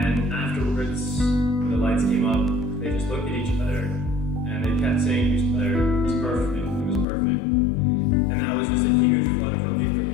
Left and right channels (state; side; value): drops out; right; at 7.1 s